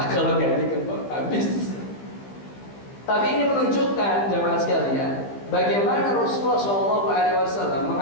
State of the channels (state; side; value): late; right; 15 ms